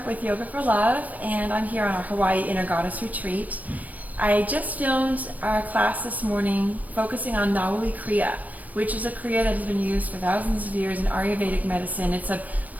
with Yoga for Love, and I'm here on our Hawaii Inner Goddess Retreat. I just filmed our class this morning focusing on Nauli Kriya, which is a Kriya that has been used for thousands of years in Ayurvedic medicine. It's a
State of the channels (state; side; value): late; left; 0.075 ms